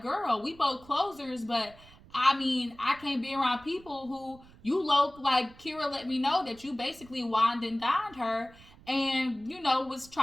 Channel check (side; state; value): right; noise; rumble, 23 dB below the sound